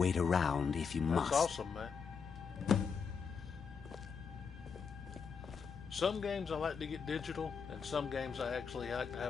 around if you must. That's awesome, man. Some games I like to get digital, and some games I actually like to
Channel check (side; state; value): right; quieter; 5.9 dB